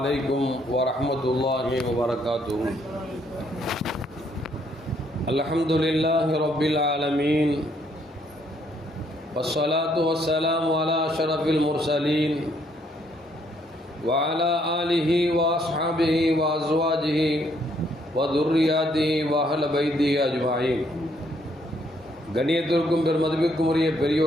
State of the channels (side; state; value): both; normal; correlation 0.69